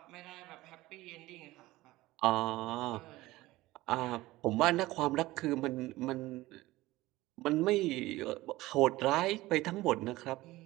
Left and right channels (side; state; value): left; quieter; 18.3 dB